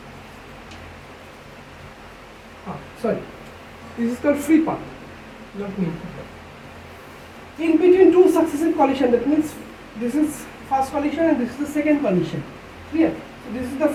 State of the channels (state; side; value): identical; both; correlation 1.00